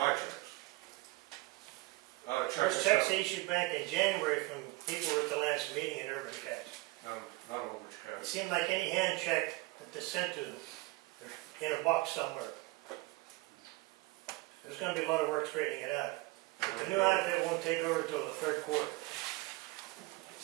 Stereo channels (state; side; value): quieter; left; 21.6 dB